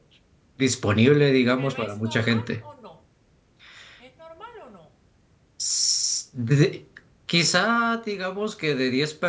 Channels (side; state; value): both; identical; correlation 1.00